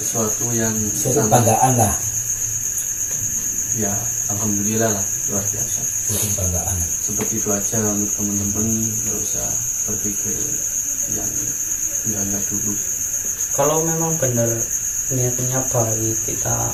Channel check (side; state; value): both; identical; correlation 1.00